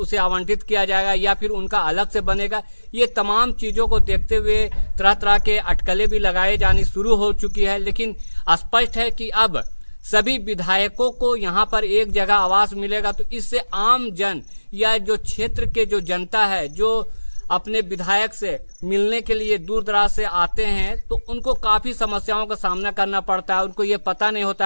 आवंटित किया जाएगा, या फिर उनका अलग से बनेगा। ये तमाम चीजों को देखते हुए तरह तरह के अटकलें भी लगाए जानी शुरू हो चुकी है। लेकिन स्पष्ट है कि अब सभी विधायकों को यहाँ पर एक जगह आवास मिलेगा, तो इससे आम जन या जो क्षेत्र के जो जनता है, जो अपने विधायक से मिलने के लिए दूर दराज से आते हैं, तो उनको काफी समस्याओं का सामना करना पड़ता है। उनको ये पता नहीं होता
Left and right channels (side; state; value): both; inverted; correlation -1.00